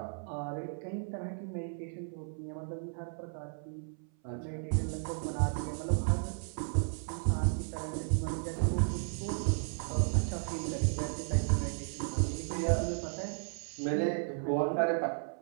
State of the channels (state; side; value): silent; left; 55 dB below the other